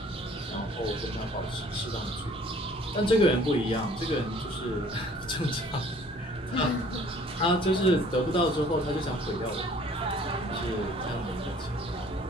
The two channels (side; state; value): both; normal; correlation 0.55